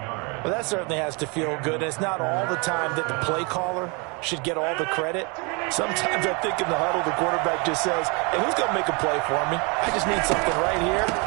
Well, that certainly has to feel good. It's not all the time that the play caller should get all the credit. Sometimes I think in the huddle, the quarterback just says, hey, who's going to make a play for me? I just need something right here.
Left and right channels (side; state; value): left; quieter; 31.0 dB